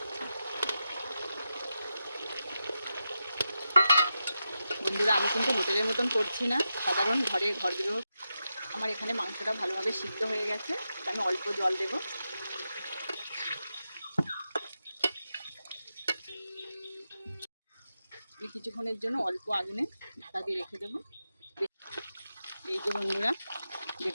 বন্ধুরা আমি কিন্তু হোটেলের মতন করছি না, সাধারণ ঘরগুলো। আমার এখানে মাংসটা ভালোভাবে সিদ্ধ হয়ে গেছে, আমি অল্প জল দেবো। কিছুক্ষণের জন্য অল্প আগুনে ঢাকা দিয়ে রেখে দেবো। এই যে বন্ধুরা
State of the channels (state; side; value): inverted; both; correlation -0.89